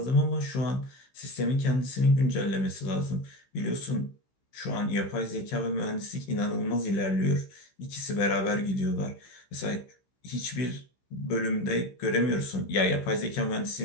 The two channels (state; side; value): late; right; 15 ms